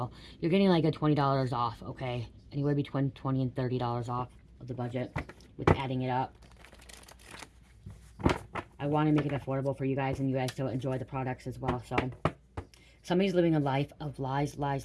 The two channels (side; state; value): both; identical; correlation 1.00